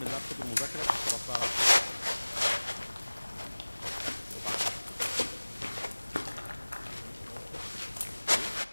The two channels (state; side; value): inverted; both; correlation -1.00